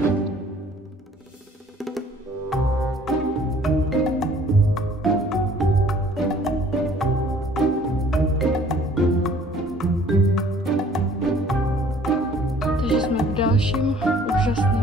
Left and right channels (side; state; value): both; normal; correlation 0.55